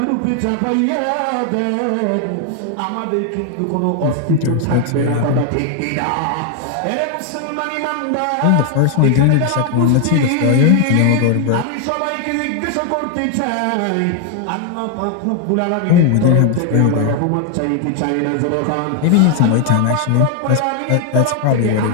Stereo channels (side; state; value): both; different; correlation 0.00